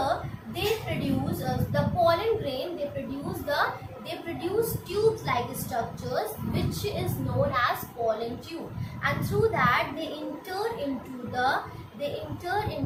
they produce the pollen grain, they produce tube like structures which is known as pollen tube, and through that they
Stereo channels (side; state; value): both; identical; correlation 1.00